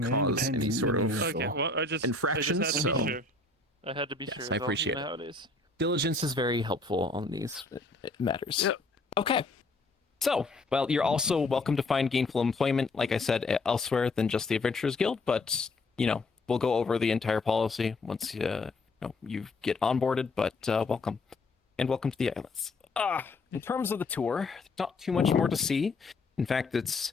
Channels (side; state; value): right; quieter; 3.3 dB